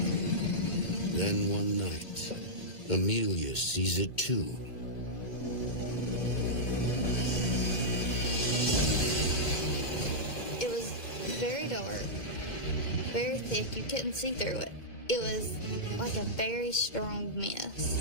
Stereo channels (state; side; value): late; right; 2.2 ms